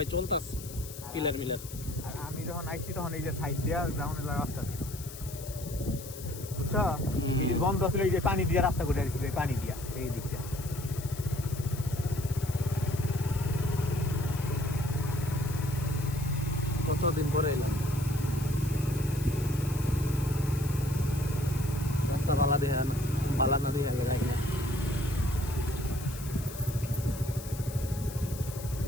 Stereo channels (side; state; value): left; noise; hiss, 13 dB below the sound